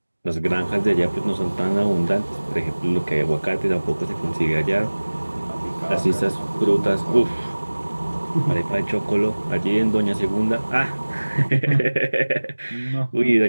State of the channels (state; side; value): inverted; both; correlation -1.00